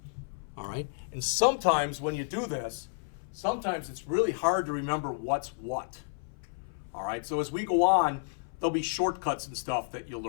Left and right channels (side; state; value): right; silent; 57 dB below the other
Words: All right? And sometimes when you do this, sometimes it's really hard to remember what's what. All right? So as we go on, there'll be shortcuts and stuff that you'll